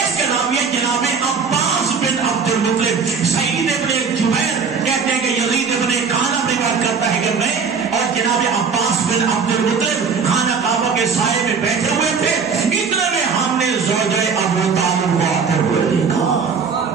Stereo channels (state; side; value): quieter; left; 5.6 dB